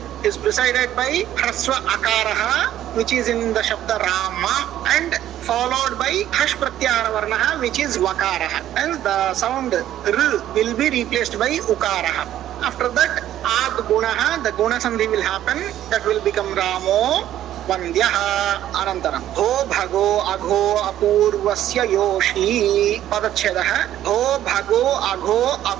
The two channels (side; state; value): left; quieter; 12.2 dB